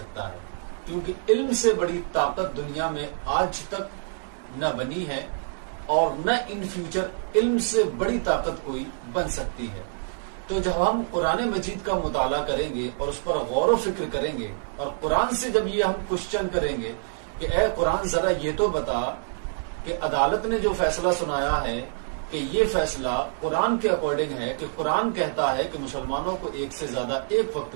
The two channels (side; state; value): left; silent; digital silence